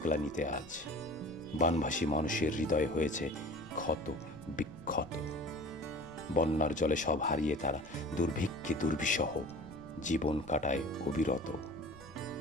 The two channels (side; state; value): left; noise; rumble, 23 dB below the sound